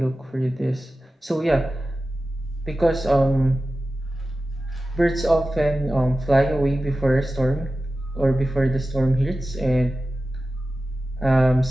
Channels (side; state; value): both; normal; correlation 0.94